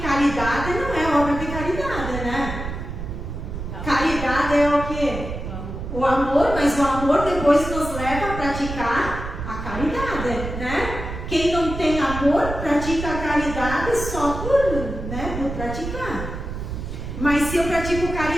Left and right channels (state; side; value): noise; right; rumble, 7 dB below the sound